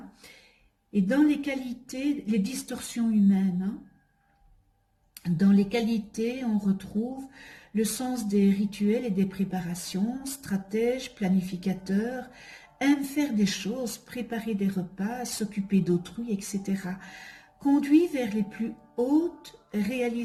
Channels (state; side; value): identical; both; correlation 1.00